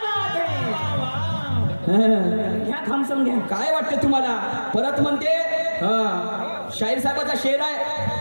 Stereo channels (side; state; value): both; inverted; correlation -1.00